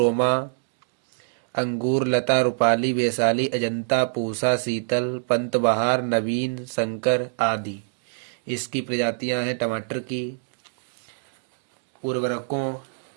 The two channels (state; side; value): silent; left; digital silence